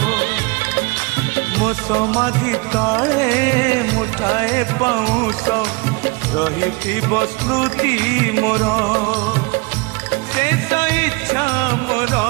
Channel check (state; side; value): quieter; left; 26.8 dB